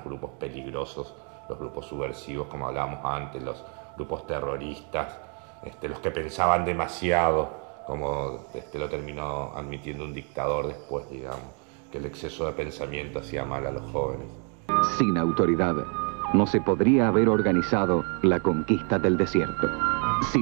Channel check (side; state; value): left; quieter; 39.2 dB